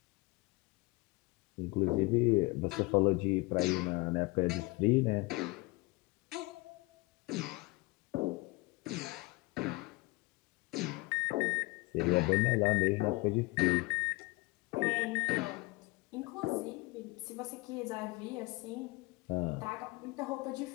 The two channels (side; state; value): right; quieter; 24.6 dB